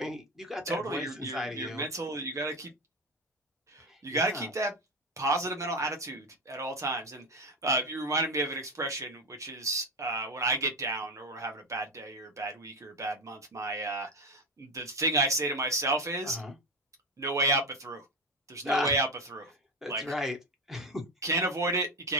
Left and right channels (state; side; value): normal; both; correlation 0.17